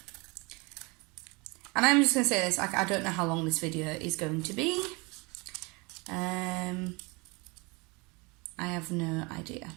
And I'm just going to say this, I don't know how long this video is going to be. I have no idea.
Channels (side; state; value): left; quieter; 27.5 dB